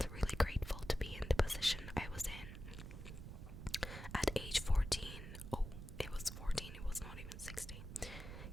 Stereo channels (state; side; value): noise; right; rumble, 9 dB below the sound